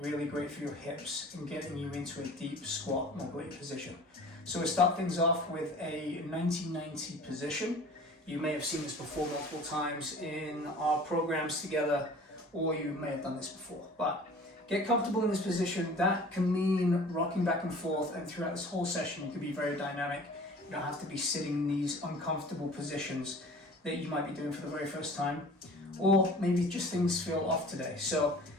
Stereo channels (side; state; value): both; normal; correlation 0.44